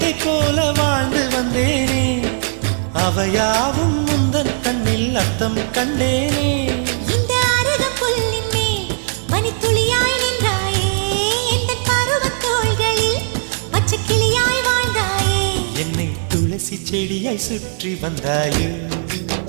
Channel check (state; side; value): silent; left; digital silence